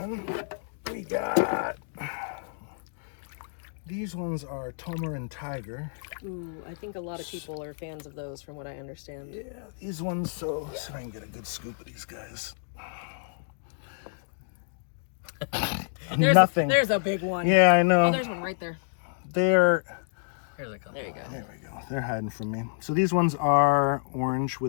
we got these ones are Tomer and Tiger. Ooh, I think a lot of people are fans of those, from what I understand. Yeah, these ones. So I can get a good scoop of these guys. Nothing. There's a big one. Yeah, I know. Oh, there's one right there. They're Here's a couple. There you go. there we go. They're hiding from me. So these ones are orange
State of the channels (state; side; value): silent; right; digital silence